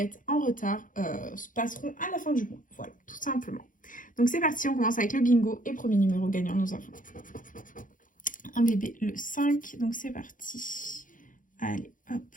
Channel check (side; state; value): right; late; 0.39 ms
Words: en retard se passeront à la fin du mois. Voilà, tout simplement. Donc c'est parti, on commence avec le bingo et premier numéro gagnant, nous avons un bébé le 5, donc c'est parti. Allez, hop,